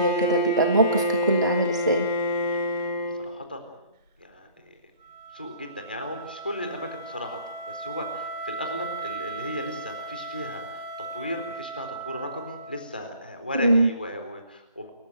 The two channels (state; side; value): inverted; both; correlation -0.51